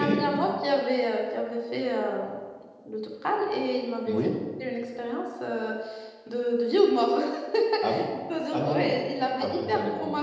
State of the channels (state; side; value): identical; both; correlation 1.00